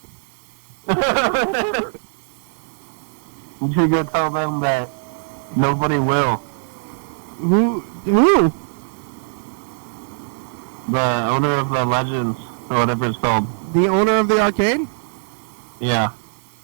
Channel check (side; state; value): left; silent; digital silence